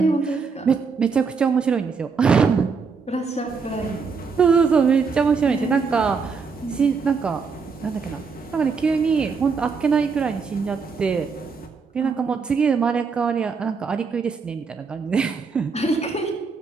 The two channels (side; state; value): left; quieter; 5.2 dB